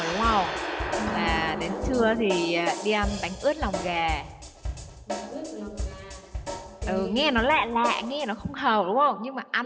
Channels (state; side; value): identical; both; correlation 1.00